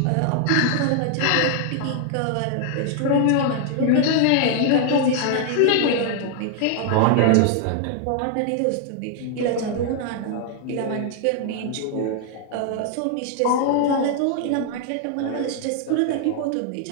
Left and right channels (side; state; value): both; different; correlation 0.00